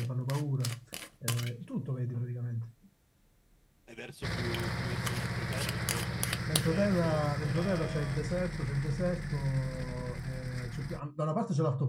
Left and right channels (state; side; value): identical; both; correlation 1.00